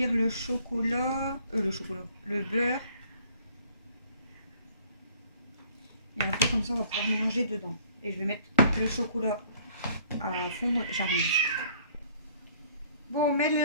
le chocolat, le beurre. Et après comme ça on va pouvoir mélanger dedans. Et je vais mettre le chocolat à fondre, j'arrive. Bon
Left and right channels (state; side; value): inverted; both; correlation -0.58